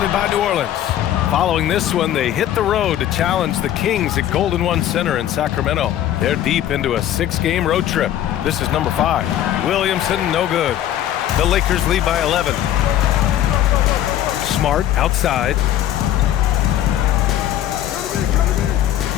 by New Orleans. Following this one, they hit the road to challenge the Kings at Golden One Center in Sacramento. They're deep into a 6-game road trip. This is number 5. Williamson, no good. The Lakers lead by 11. Smart, outside.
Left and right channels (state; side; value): quieter; right; 11.9 dB